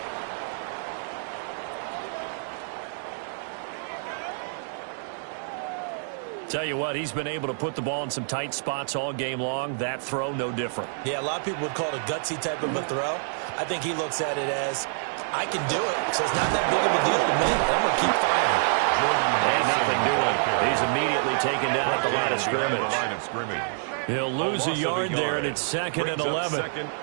Tell you what, he's been able to put the ball in some tight spots all game long. That throw, no different. Yeah, a lot of people would call it a gutsy type of a throw. I think he looks at it as, I can do it, so it's not that big of a deal to me. I'm going to keep firing. And nothing doing. He's immediately taken down at the line of scrimmage. He'll lose a yard there, and it's 2nd and 11.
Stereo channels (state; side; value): silent; left; digital silence